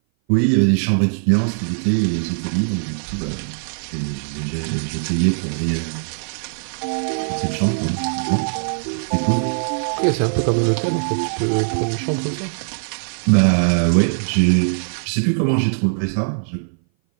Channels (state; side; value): silent; left; 59 dB below the other